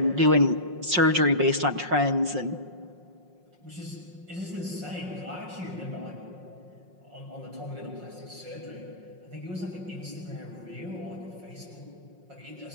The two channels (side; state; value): left; late; 5.5 ms